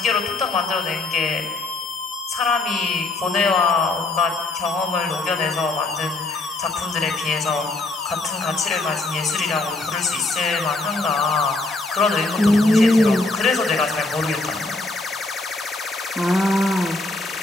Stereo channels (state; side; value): quieter; right; 3.1 dB